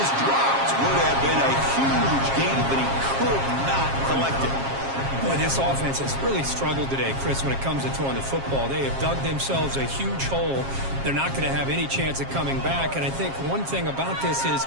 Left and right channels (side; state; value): left; late; 7.4 ms